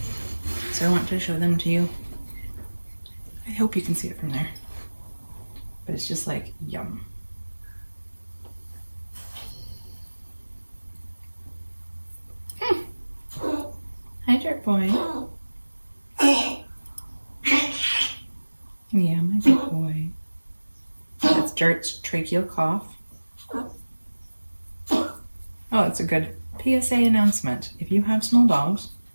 So I want to show them to you. I hope you can see it from there. But it's just like yum. Hi, Jerk Boy. Yeah, my good boy. That's Jerk's tracheal cough. Oh, that's a good PSA announcement. If you have small dogs,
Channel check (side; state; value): both; inverted; correlation -1.00